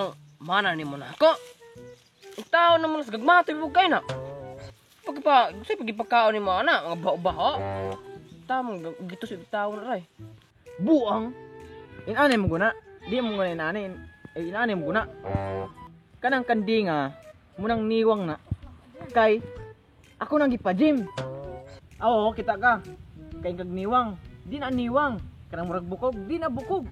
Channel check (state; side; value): identical; both; correlation 1.00